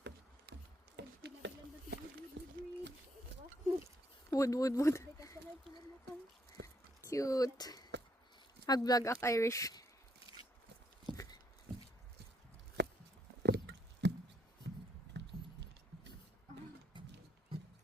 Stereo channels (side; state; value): both; normal; correlation 0.73